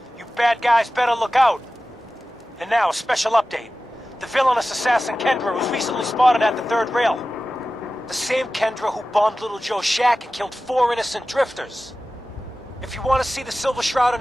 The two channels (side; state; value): both; normal; correlation 0.95